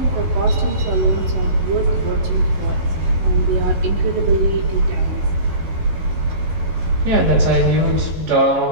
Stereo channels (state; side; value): late; left; 11 ms